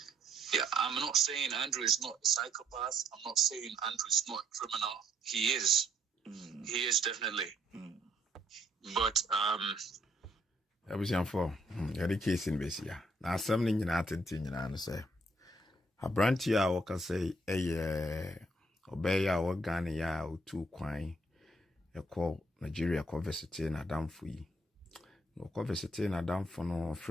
Yeah, I'm not saying Andrew is not a psychopath. I'm not saying Andrew is not a criminal. He is. He is definitely. But I was young for the case in Bessia. Now, something in attitude, and say, a branch ya, or can say, obey our Ghana or 2 quine, a call Nigeria conversity and a damn free. No conversity and a damn for no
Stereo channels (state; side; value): normal; both; correlation 0.68